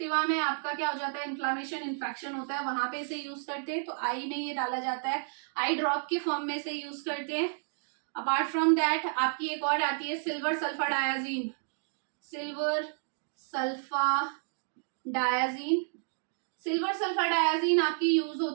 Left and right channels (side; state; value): left; silent; digital silence